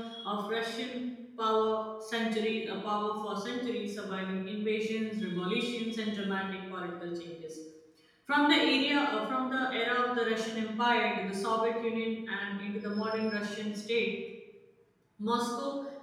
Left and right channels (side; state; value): both; identical; correlation 1.00